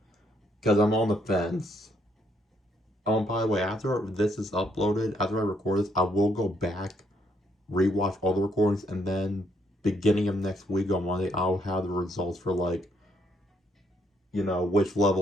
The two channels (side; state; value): both; normal; correlation 0.72